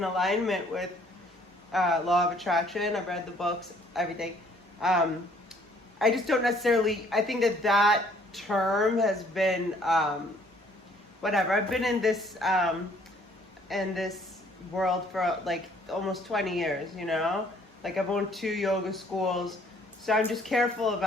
alignment with Law of Attraction. I've read the books, everything. I just don't necessarily, I think that term has been, whatever. I've been in this world for almost 20 years, I've owned 2 yoga schools, so I'm just careful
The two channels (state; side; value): normal; both; correlation 0.60